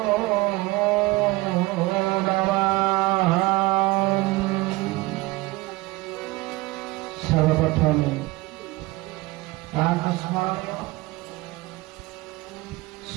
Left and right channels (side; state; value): left; quieter; 21.4 dB